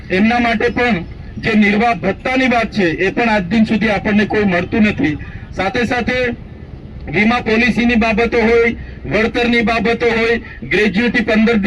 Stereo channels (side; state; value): both; identical; correlation 1.00